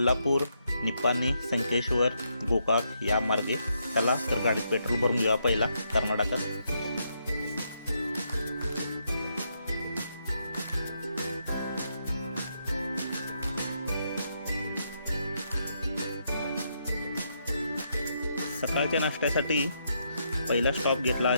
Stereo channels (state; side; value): inverted; both; correlation -0.78